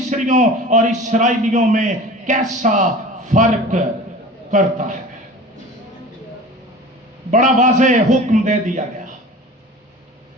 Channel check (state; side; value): normal; both; correlation 0.39